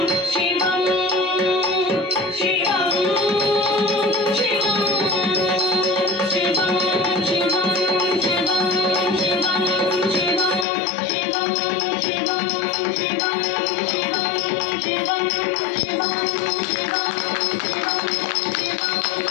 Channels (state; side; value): drops out; right; at 10.7 s